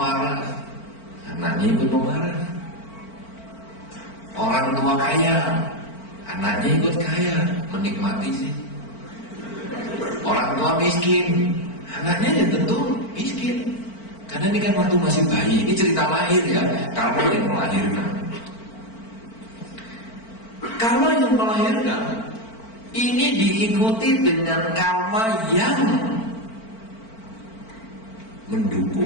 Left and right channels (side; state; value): right; late; 4.5 ms